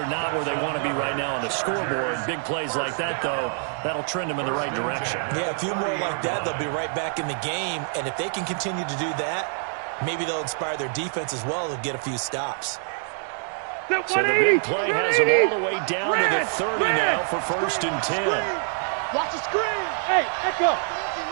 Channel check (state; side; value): silent; left; 57 dB below the other